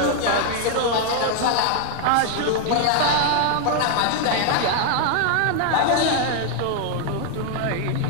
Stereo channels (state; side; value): different; both; correlation 0.00